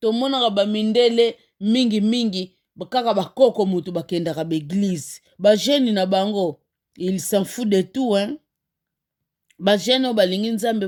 Tomonaka bamindele mingi kaka bakoko mutu bakendaka beglise. Ba jeune na bango, il s'en fout de tout hein. Ba jeune balingi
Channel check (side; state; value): both; identical; correlation 1.00